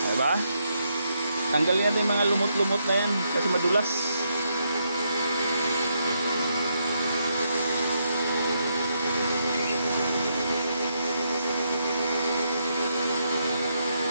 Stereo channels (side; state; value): both; inverted; correlation -0.79